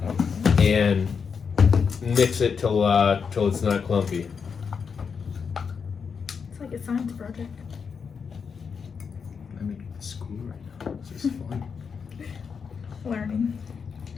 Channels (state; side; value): quieter; right; 6.0 dB